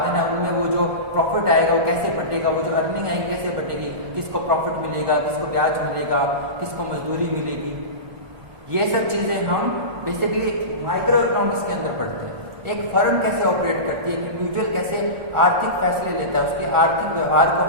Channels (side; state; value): left; late; 1.4 ms